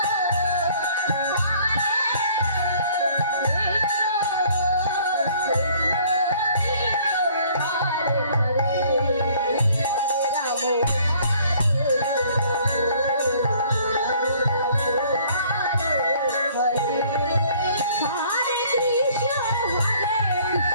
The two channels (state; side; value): inverted; both; correlation -0.57